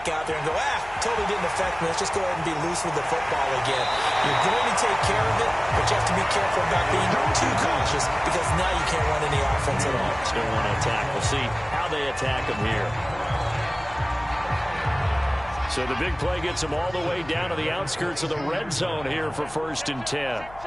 out there and go, totally didn't affect me. Let's just go ahead and be loose with the football again. You're going to take care of it, but you have to be careful about being too cautious because now you can't run any offense at all. Still want to attack. We'll see how they attack them here. So the big play gets them all the way down to the outskirts of the red zone here for 1st and 10.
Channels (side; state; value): left; noise; hum, 20 dB below the sound